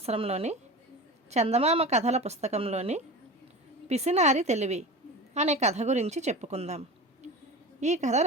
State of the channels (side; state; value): both; normal; correlation 0.31